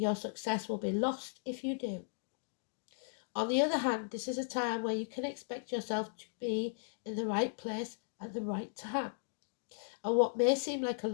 success will be lost if you do. On the other hand, this is a time where you can expect yourself to be in the right place at the right time. And what may seem like a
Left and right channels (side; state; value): right; silent; digital silence